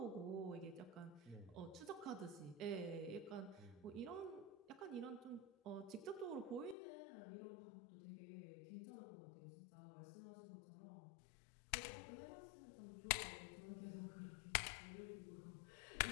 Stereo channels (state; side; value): drops out; right; at 6.8 s